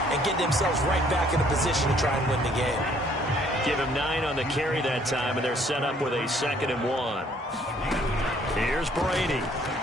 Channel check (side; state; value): both; normal; correlation 0.62